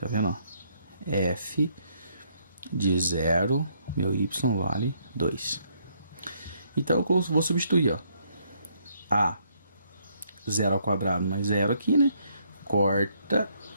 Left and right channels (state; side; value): inverted; both; correlation -0.71